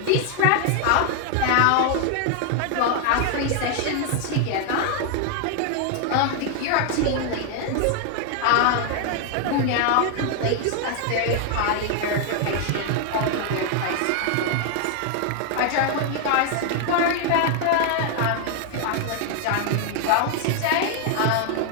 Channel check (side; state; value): both; different; correlation 0.00